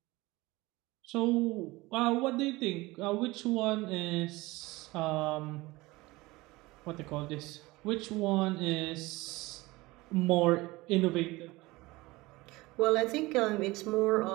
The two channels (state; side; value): quieter; left; 21.0 dB